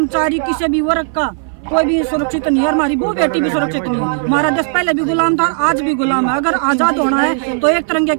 किसी भी वर्ग का कोई भी सुरक्षित नहीं है। हमारी वो बेटी भी सुरक्षित नहीं है। हमारा देश पहले भी गुलाम था, आज भी गुलाम है। अगर आजाद होना है तो एक तिरंगे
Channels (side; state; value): left; silent; 59 dB below the other